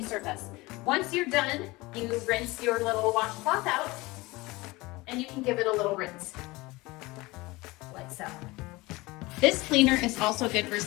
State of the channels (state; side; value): quieter; right; 22.0 dB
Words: surface. Once you're done, you rinse your little washcloth out and you can give it a little rinse, like so. This cleaner is also good for